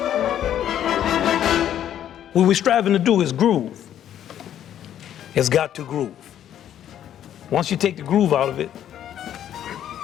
What we're striving to do is groove. It's got to groove. Once you take the groove out of it,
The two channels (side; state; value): right; quieter; 10.7 dB